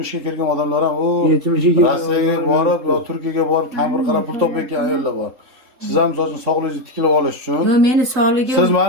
ga kirgan odamlar ham, 70 ga Rossiyaga borib, yo Turkiyaga borib, kampir qarab pul topayotgan ayollar bor. Siz ham so'zini sog'ligingizni tiklab olish uchun. Yo'q, meni sog'ligim. Siz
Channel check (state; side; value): late; left; 3.7 ms